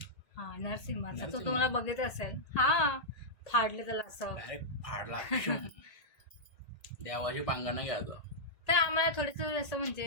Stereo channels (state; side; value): late; right; 1.8 ms